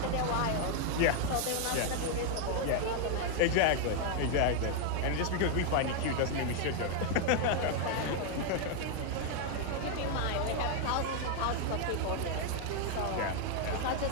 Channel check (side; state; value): both; different; correlation 0.00